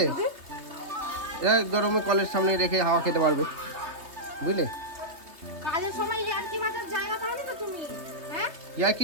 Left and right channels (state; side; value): late; left; 3.3 ms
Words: এটা গরমে কলের সামনে রেখে হাওয়া খেতে পারবে, বুঝলে? কাজের সময় ইয়ার্কি মাথার জায়গা পাও না তো তুমি, হ্যাঁ? ইয়ার্কি